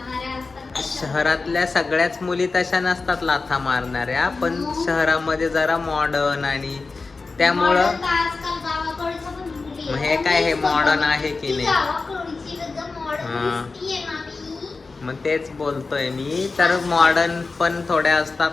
असतात. शहरातल्या सगळ्याच मुली तशा नसतात लाथा मारणाऱ्या, पण शहरामध्ये जरा मॉडर्न आणि त्यामुळं Modern तर आजकाल गावाकडच्या पण मुली मग आहेत. हे काय, हे मॉडर्न आहे की ती नाही? गावाकडची एकदम हा. modern दिसतीये ना मी. मग तेच बोलतोय मी, तर मॉडर्न पण थोड्या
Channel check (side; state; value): right; quieter; 4.0 dB